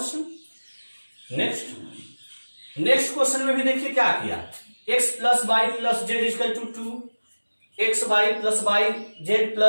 नेक्स्ट क्वेश्चन में भी देखिए क्या किया, x plus Y plus z equal to 2, x Y plus Y Z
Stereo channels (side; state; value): both; inverted; correlation -1.00